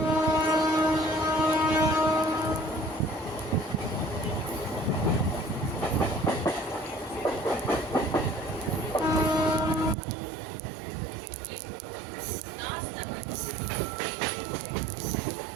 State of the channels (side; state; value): left; drops out; at 10.0 s